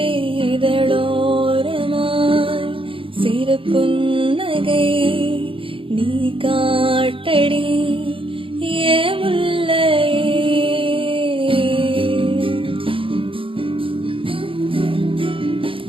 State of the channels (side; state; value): left; late; 0.26 ms